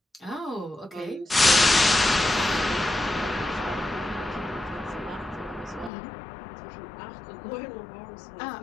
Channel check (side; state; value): right; drops out; at 5.9 s